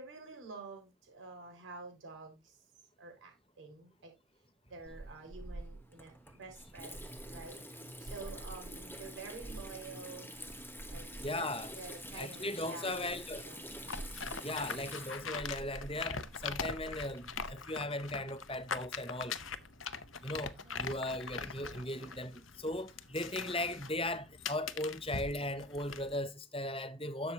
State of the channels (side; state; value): both; normal; correlation 0.32